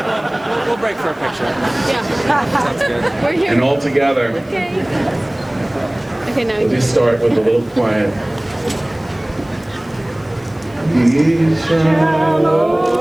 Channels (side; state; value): left; noise; hiss, 30 dB below the sound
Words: We'll break for a picture. Yeah. Sounds good. We're here. And all together. Okay. Okay, now We'll just start with a little quiet. We shall